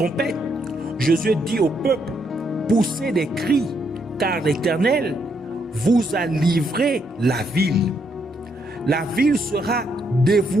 Josué dit au peuple: poussez des cris, car l'Éternel vous a livré la ville. La ville sera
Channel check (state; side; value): normal; both; correlation 0.75